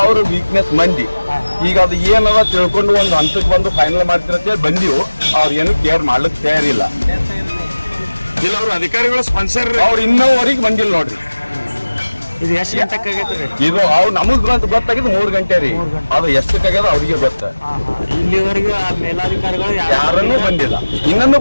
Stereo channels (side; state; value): both; inverted; correlation -1.00